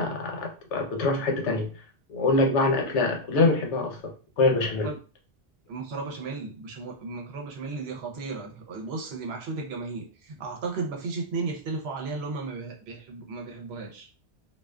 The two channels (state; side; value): normal; both; correlation -0.06